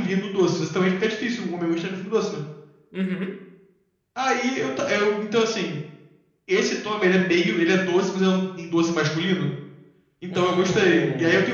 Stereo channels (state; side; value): identical; both; correlation 1.00